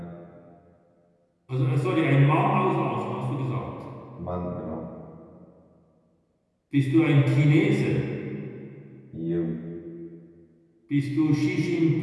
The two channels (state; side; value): identical; both; correlation 1.00